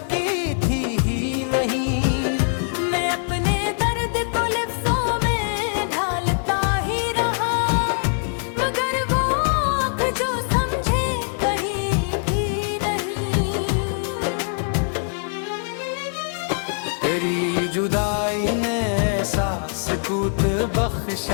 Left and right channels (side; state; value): right; silent; 64 dB below the other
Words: की थी ही नहीं। मैं अपने दर्द को लिफ्ज़ों में ढालता ही रहा, मगर वो आँख जो समझे कहीं भी नहीं। तेरी जुदाई ने ऐसा सुकूत